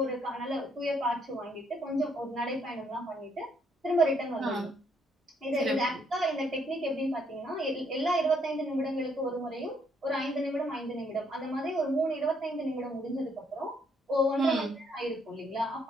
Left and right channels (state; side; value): normal; both; correlation 0.70